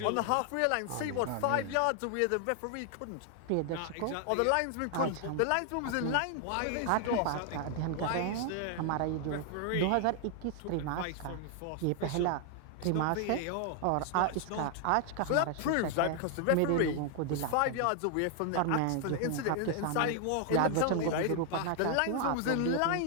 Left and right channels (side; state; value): both; different; correlation 0.00